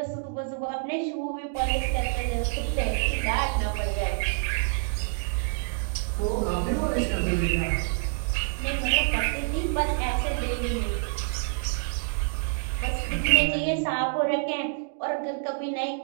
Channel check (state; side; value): silent; left; digital silence